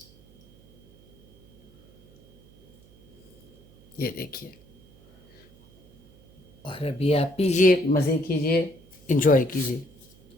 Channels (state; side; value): noise; right; hum, 28 dB below the sound